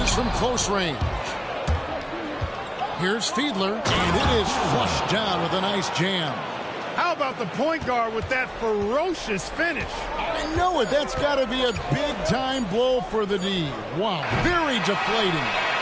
from close range. Here's Fiedler, and it is flushed down with a nice jam. How about the point guard with that ferocious finish? I know it. That's got to be a big-time blow for the D. Wow, very deflating.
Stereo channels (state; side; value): identical; both; correlation 1.00